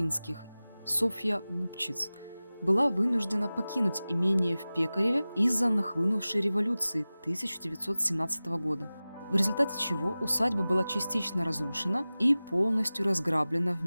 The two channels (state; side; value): inverted; both; correlation -0.97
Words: Софья Губчиц, была вынуждена покинуть имение в Пекареве из-за нахлынувшей революции 1917 года, в результате чего усадьба была частично разрушена и полностью разграблена